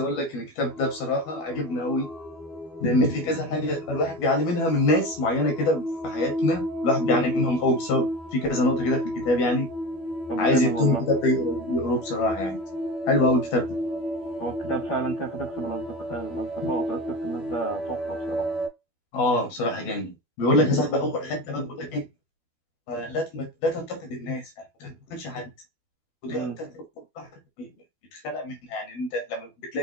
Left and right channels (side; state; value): right; late; 12 ms